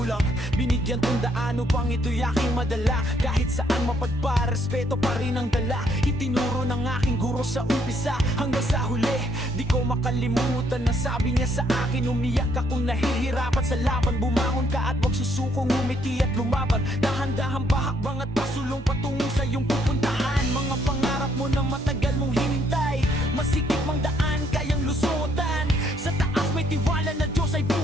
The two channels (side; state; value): both; normal; correlation 0.70